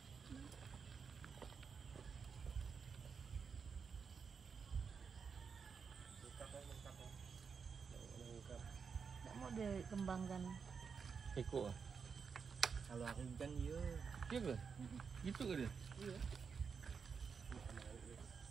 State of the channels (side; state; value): left; quieter; 5.9 dB